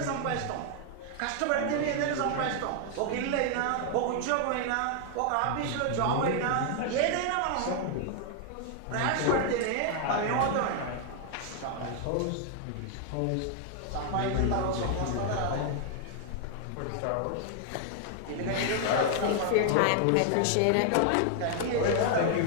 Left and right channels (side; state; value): both; different; correlation 0.00